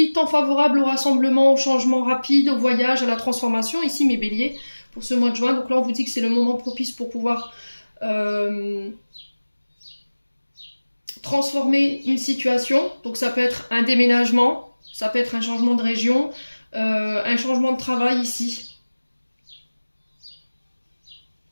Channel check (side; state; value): both; inverted; correlation -1.00